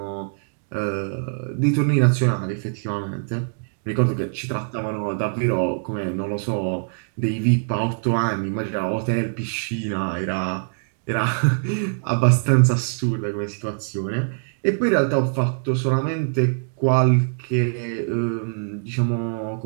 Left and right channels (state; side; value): silent; left; digital silence